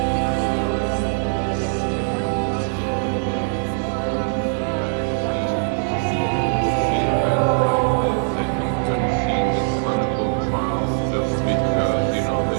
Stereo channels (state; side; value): silent; left; digital silence